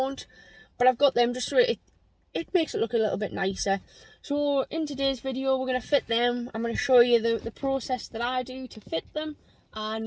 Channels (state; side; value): identical; both; correlation 1.00